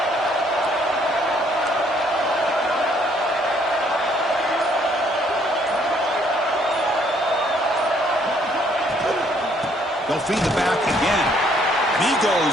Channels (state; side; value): normal; both; correlation 0.65